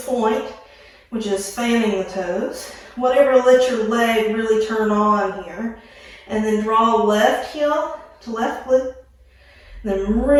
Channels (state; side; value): identical; both; correlation 1.00